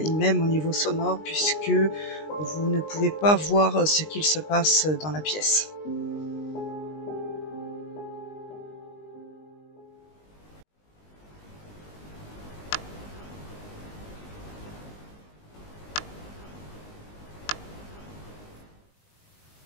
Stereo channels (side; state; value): right; late; 19 ms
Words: même au niveau sonore, puisque vous ne pouvez pas voir ce qu'il se passe dans la pièce.